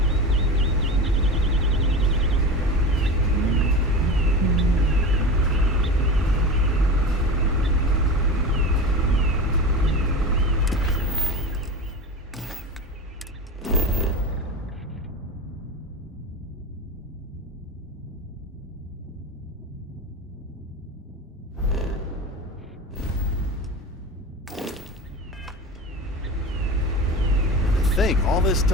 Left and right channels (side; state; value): both; normal; correlation 0.28